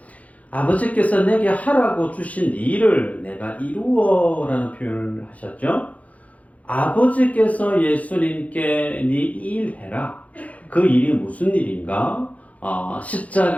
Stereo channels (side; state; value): right; late; 0.069 ms